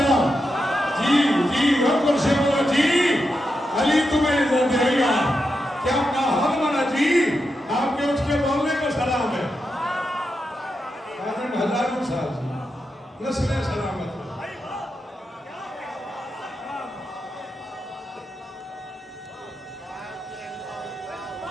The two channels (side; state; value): both; normal; correlation 0.87